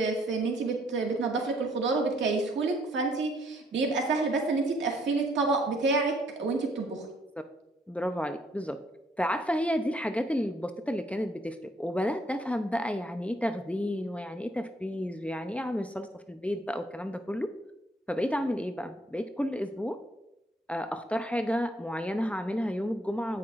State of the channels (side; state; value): both; normal; correlation 0.67